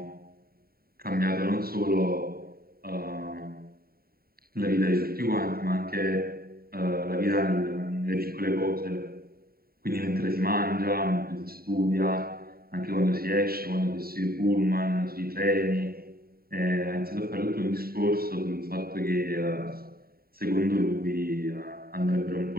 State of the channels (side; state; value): left; late; 0.43 ms